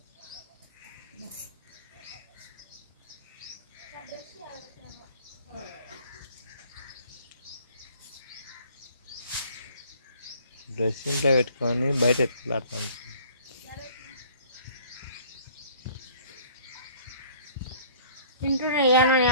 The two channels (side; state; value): both; inverted; correlation -0.54